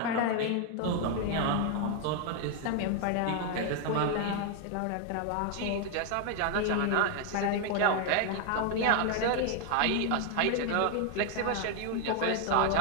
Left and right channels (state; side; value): different; both; correlation 0.01